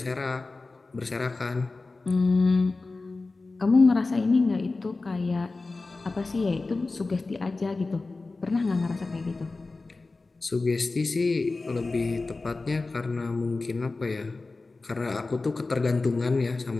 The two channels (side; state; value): right; quieter; 3.6 dB